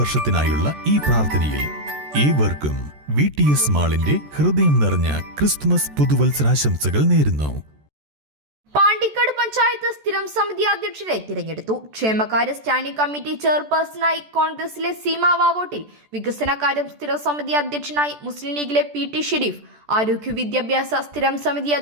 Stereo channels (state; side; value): late; left; 14 ms